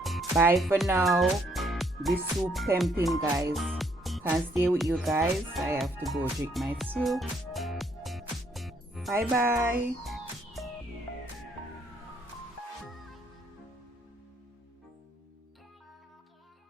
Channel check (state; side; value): normal; both; correlation 0.69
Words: Bye for now. This soup tempting, guys. Can't stay with you guys. I have to go drink my soup. Bye bye.